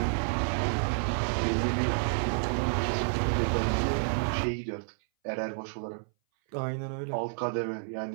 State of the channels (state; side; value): silent; left; 58 dB below the other